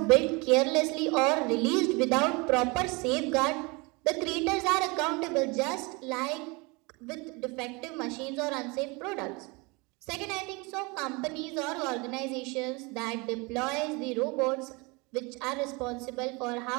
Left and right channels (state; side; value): quieter; left; 27.3 dB